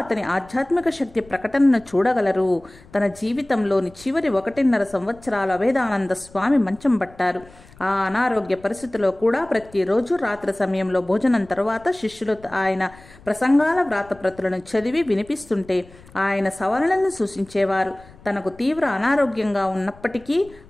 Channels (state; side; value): noise; left; rumble, 24 dB below the sound